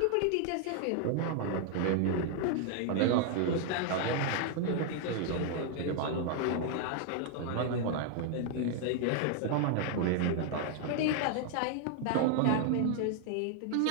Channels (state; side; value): different; both; correlation 0.00